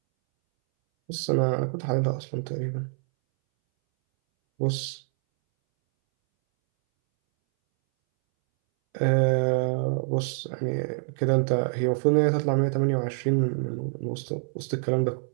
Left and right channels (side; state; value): left; silent; 61 dB below the other